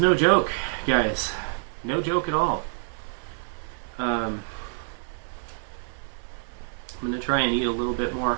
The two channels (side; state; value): left; silent; 60 dB below the other